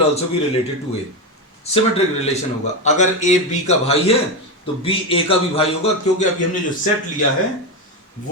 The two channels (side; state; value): both; normal; correlation 0.13